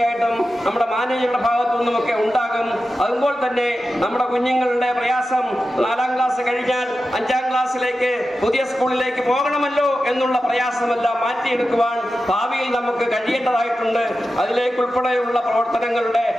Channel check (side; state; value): both; normal; correlation 0.92